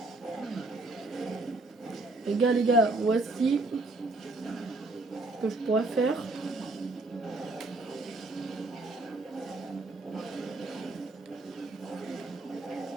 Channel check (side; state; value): left; quieter; 3.0 dB